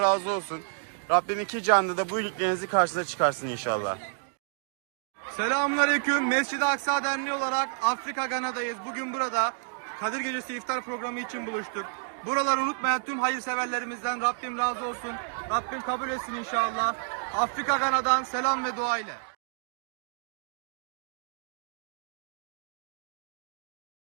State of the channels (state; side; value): silent; left; digital silence